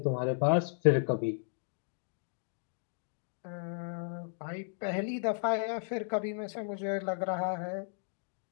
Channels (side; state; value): right; silent; digital silence